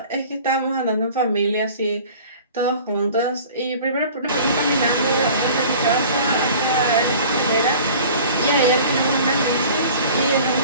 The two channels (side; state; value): both; inverted; correlation -0.45